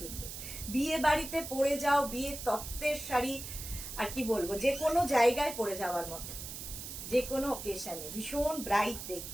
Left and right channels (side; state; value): right; noise; hiss, 9 dB below the sound